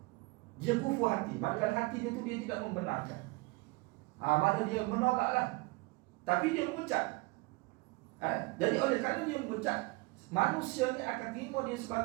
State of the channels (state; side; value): quieter; left; 24.5 dB